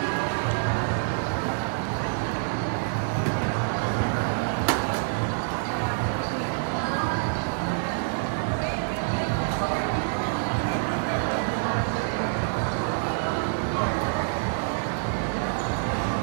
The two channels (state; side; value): silent; left; digital silence